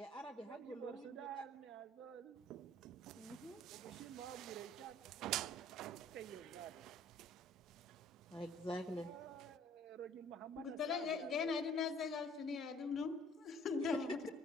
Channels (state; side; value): normal; both; correlation 0.55